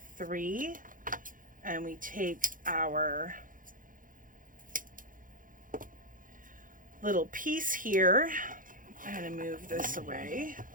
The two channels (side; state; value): left; late; 0.39 ms